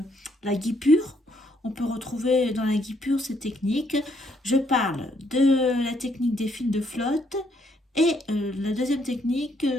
la guipure. On peut retrouver dans la guipure ces techniques. Je parle de la technique des fils de flotte et la deuxième technique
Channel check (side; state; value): both; normal; correlation 0.71